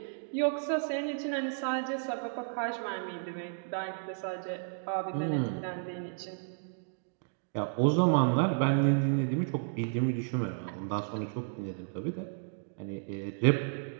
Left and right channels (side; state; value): left; silent; digital silence